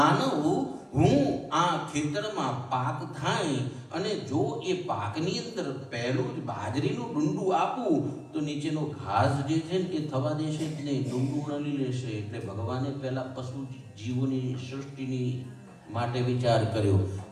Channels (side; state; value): both; identical; correlation 1.00